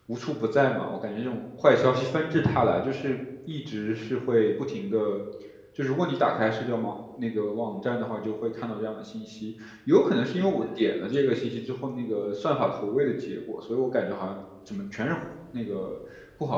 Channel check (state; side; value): identical; both; correlation 1.00